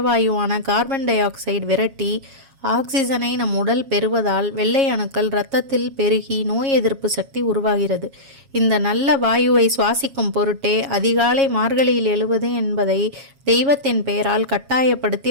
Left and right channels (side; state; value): left; late; 7.3 ms